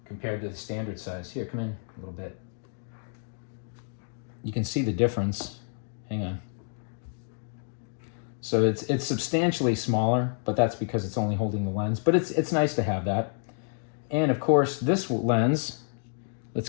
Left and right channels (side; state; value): right; silent; digital silence